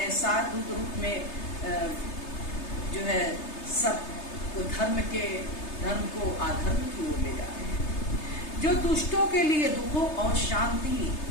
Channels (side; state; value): right; late; 3.3 ms